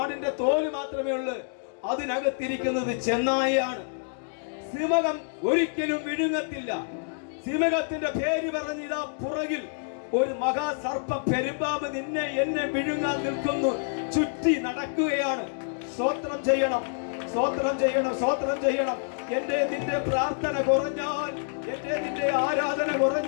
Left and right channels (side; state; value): right; silent; digital silence